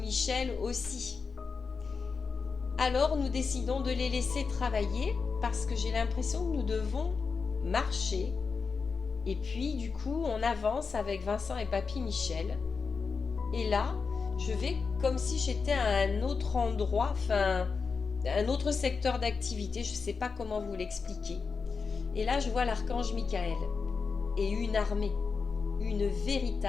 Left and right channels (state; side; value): quieter; right; 5.1 dB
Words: aussi. Alors nous décidons de les laisser travailler parce que j'ai l'impression que nous devons marcher. Et puis du coup on avance avec Vincent et Papy Michel. Et là je vais comme si j'étais à un autre endroit, enfin un autre secteur d'activité, je ne sais pas comment vous l'expliquer. Et là je vois l'archange Michael et une armée, une